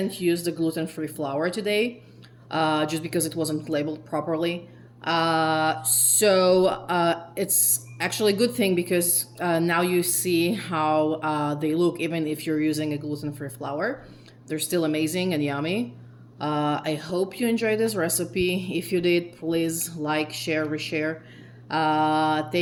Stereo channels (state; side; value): identical; both; correlation 1.00